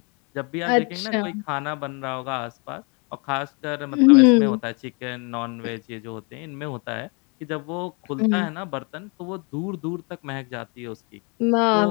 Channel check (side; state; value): right; quieter; 32.8 dB